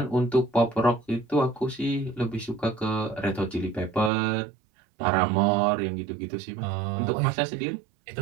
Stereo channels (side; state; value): left; drops out; at 4.1 s